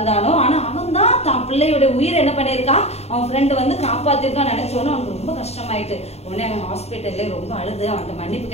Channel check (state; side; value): late; right; 0.30 ms